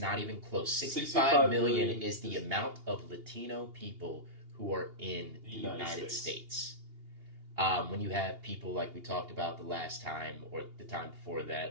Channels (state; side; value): late; left; 2.8 ms